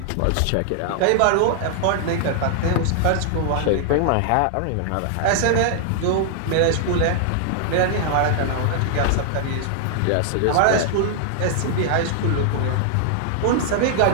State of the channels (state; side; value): different; both; correlation 0.00